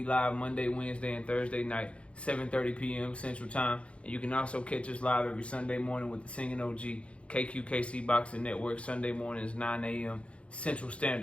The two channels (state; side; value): late; right; 0.061 ms